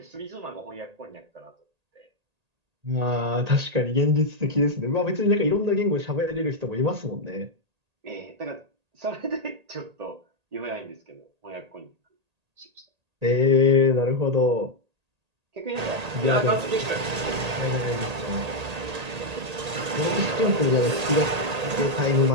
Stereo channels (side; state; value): left; late; 1.8 ms